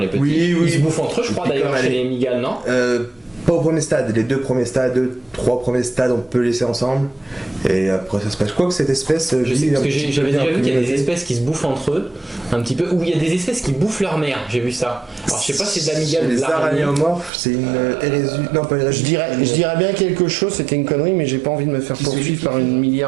petits. Oui. Ils se bouffent entre eux, je crois Et puis d'ailleurs, comme chez elle les migales, non? Pas au premier stade, les 2 premiers stades, 3 premiers stades, on peut laisser ensemble. Et après ça se passe. Je crois que cette espèce, Je sais, parce que j'avais déjà vu qu'il y a des espèces qui se bouffent entre eux, un petit peu, ou il y a des espèces qui bouffent leur mère, j'ai vu ça. Alors je sais pas si c'est de la migale ou de Les l'araignée. araignéomorphes, c'est une hérésie. Non, pas hérésie. Je dirais bien quelque chose, c'était une connerie, mais j'ai pas envie de me faire poursuivre par une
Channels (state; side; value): drops out; left; at 17.3 s